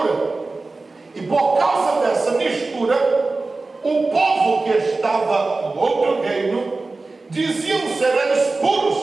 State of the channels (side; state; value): left; quieter; 3.5 dB